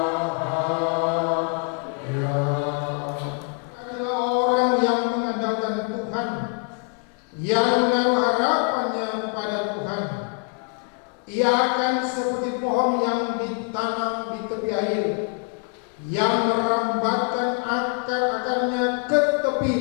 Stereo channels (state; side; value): quieter; right; 38.6 dB